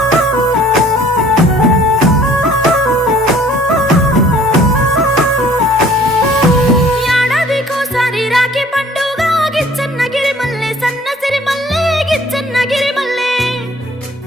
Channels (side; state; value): both; normal; correlation 0.54